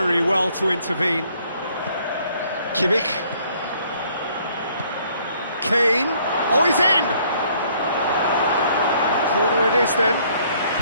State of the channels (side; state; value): both; inverted; correlation -0.63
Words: well to intervene. Kimmich. Kane. Oh, he's in! Corner it is then.